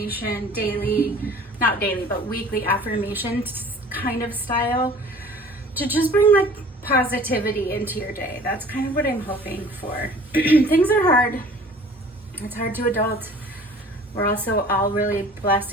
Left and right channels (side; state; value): both; normal; correlation 0.48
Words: daily, not daily, but weekly affirmation kind of style to just bring like positivity into your day. That's kind of what I'm hoping for. Things are hard. It's hard to adult. We're also all really